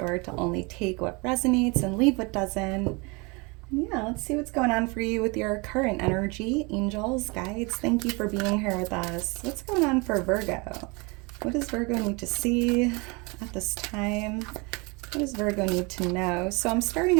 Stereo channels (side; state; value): left; quieter; 28.4 dB